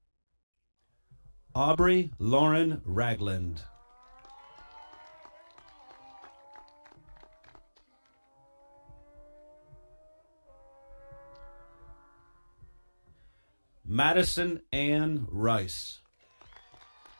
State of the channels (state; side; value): inverted; both; correlation -1.00